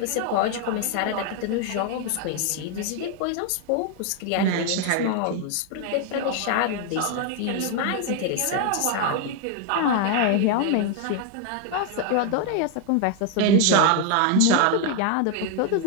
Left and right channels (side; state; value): both; different; correlation 0.01